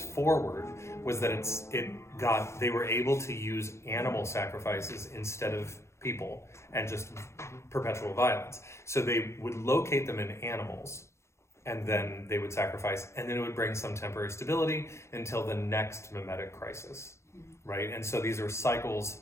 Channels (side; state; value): right; late; 0.13 ms